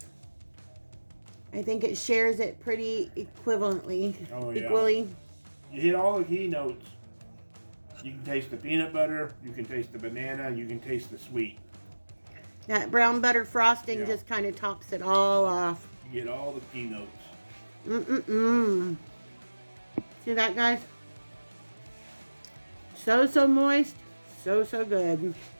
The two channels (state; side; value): inverted; both; correlation -1.00